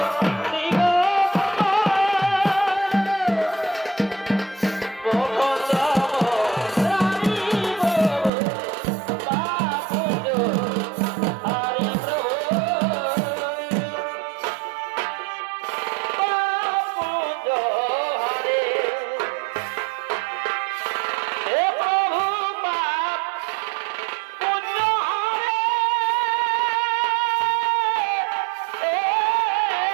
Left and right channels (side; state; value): left; drops out; at 8.3 s